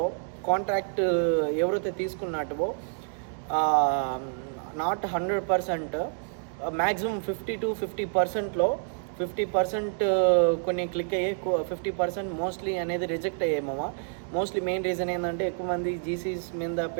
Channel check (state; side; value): silent; left; digital silence